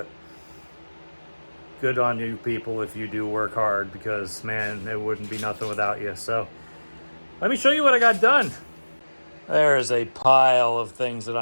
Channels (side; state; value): both; inverted; correlation -1.00